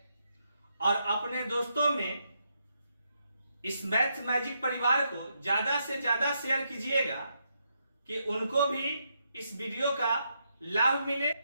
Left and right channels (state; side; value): inverted; both; correlation -0.80